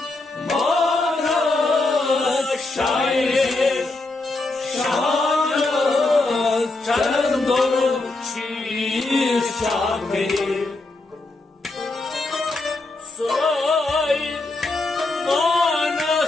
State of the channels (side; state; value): right; quieter; 3.1 dB